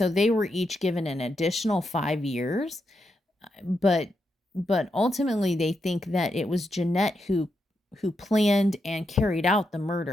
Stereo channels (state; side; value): normal; both; correlation 0.84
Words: they were each given an additional 5 years, but ultimately they think that it was Jeanette who planned and carried out the